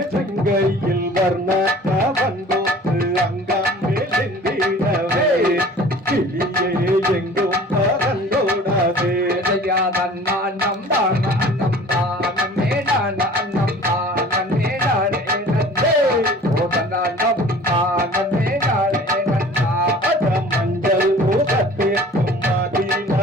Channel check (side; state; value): both; normal; correlation 0.46